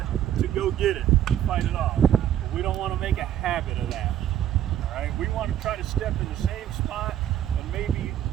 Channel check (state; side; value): quieter; left; 11.0 dB